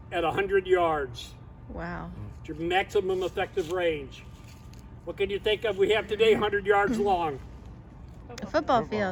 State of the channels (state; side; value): identical; both; correlation 1.00